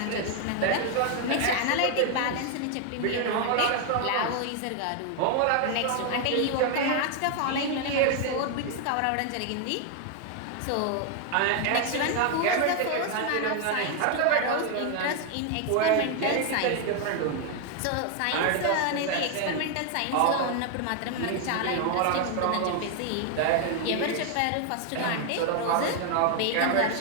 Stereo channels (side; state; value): both; different; correlation 0.00